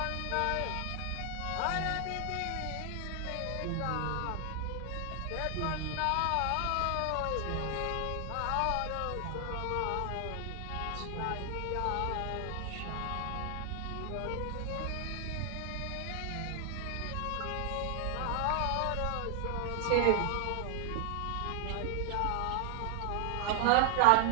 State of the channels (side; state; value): both; different; correlation 0.00